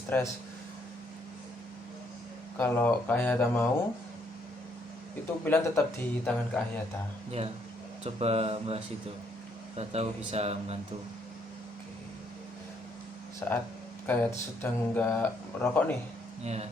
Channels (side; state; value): both; normal; correlation 0.70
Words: Kalau Kak Hayata mau, itu pilihan tetap di tangan Kak Hayata. Ya, coba bahas itu. Kita tahu bisa membantu. Saat Kak Hayata sedang nggak merokok nih, Ya,